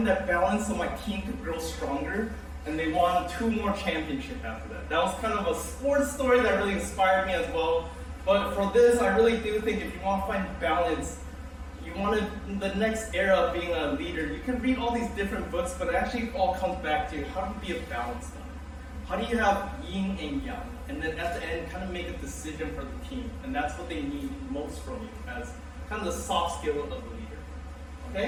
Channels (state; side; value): identical; both; correlation 1.00